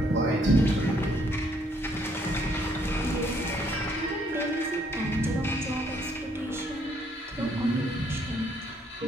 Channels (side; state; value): both; normal; correlation 0.68